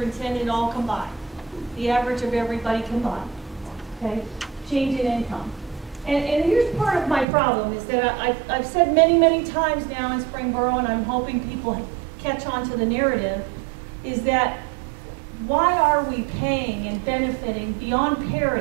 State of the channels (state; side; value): drops out; left; at 7.2 s